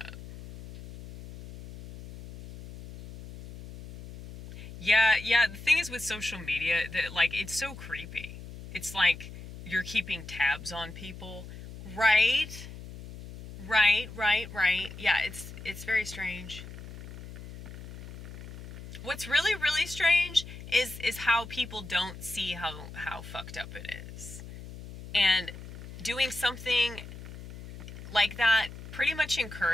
Yeah, the thing is with social media, that, like, it's so creepy. It's like you're keeping tabs on people. Right? Yeah, it's very strange. What's really, really strange is how people don't see how fucked up it is. And doing something like that pretty much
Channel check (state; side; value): noise; left; hum, 13 dB below the sound